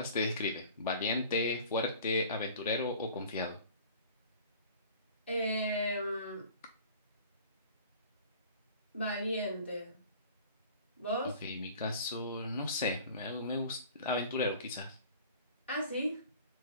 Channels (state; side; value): inverted; both; correlation -0.45